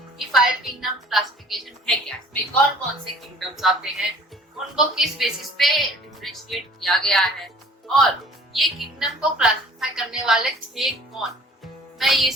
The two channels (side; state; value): both; normal; correlation 0.51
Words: कि 5 किंगडम क्लासिफिकेशन है क्या, इसमें कौन कौन से किंगडम्स आते हैं, उनको किस बेसिस पे डिफरेंशिएट किया गया है और ये किंगडम को क्लासिफाई करने वाले थे कौन। मैं ये